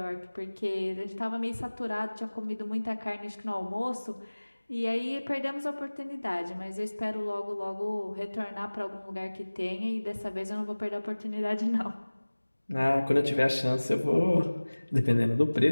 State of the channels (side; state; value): both; inverted; correlation -1.00